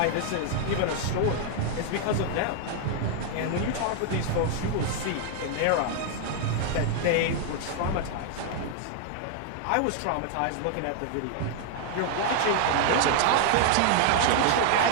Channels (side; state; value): both; different; correlation 0.00